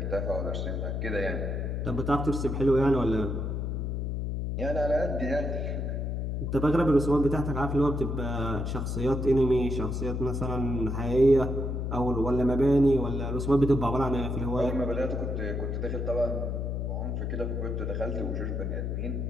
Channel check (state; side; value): noise; left; hum, 2 dB below the sound